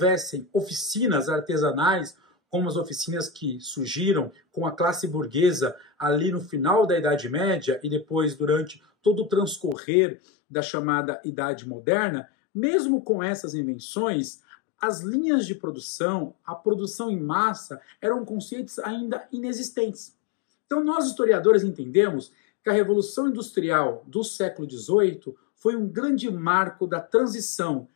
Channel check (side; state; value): right; drops out; at 9.8 s